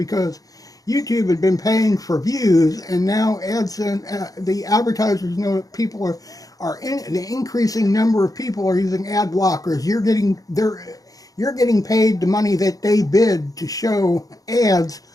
YouTube had been paying for views, and now the advertisers know that people the increasing number of people are using ad blockers. You're getting paid the money that they bid to show ads,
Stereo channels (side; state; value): right; late; 0.17 ms